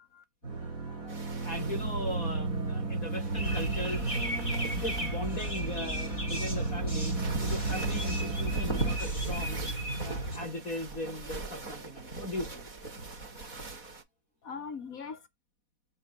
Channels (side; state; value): right; late; 4.1 ms